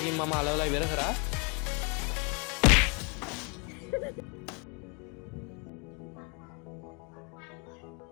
මම අලවලා ඉවර කරා.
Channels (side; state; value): right; quieter; 33.5 dB